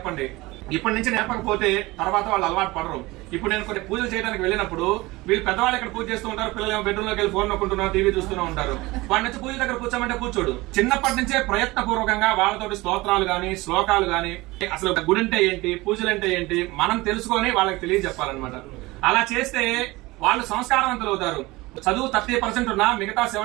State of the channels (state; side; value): quieter; left; 21.1 dB